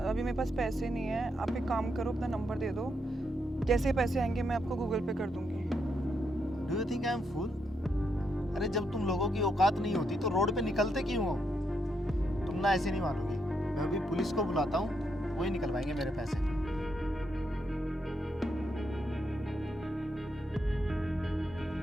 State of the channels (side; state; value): both; normal; correlation 0.79